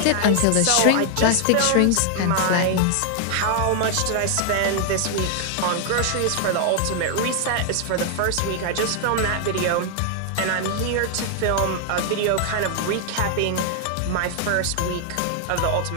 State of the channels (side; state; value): both; different; correlation 0.00